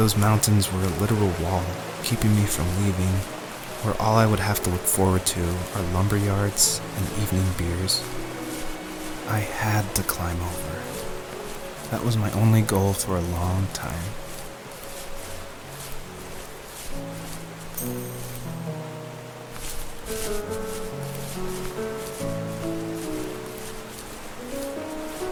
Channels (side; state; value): both; identical; correlation 1.00